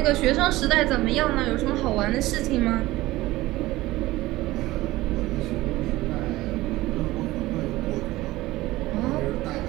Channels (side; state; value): left; quieter; 18.0 dB